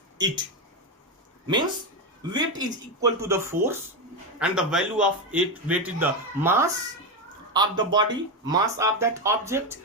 it. Means weight is equal to the force, and the value of it, weight is the mass of the body, mass of that object,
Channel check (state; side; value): normal; both; correlation 0.11